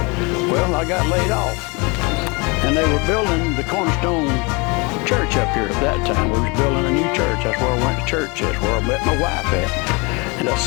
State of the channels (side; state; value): right; quieter; 29.0 dB